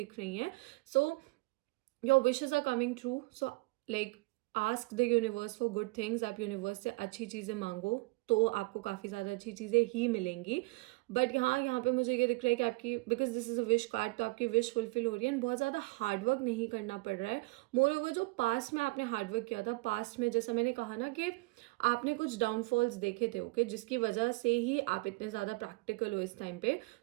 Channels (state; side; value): quieter; left; 25.6 dB